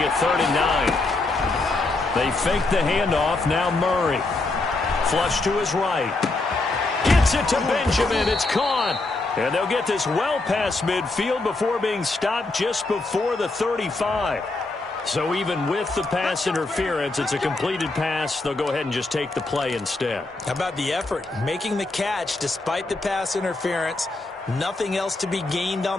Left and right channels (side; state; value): right; quieter; 3.2 dB